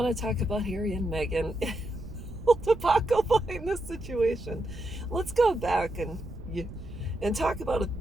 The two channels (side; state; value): right; noise; rumble, 13 dB below the sound